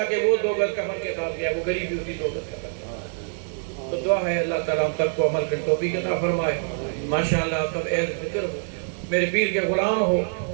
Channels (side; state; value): left; silent; digital silence